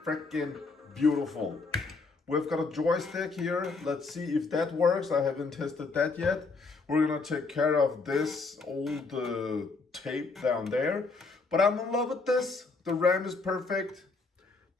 freaking beautiful. We've got a joystick here. Let's see if that works. I haven't tested that yet. We're gonna take care of this old tape down there. But I'm in love with this. The RAM is perfect.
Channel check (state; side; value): quieter; right; 4.0 dB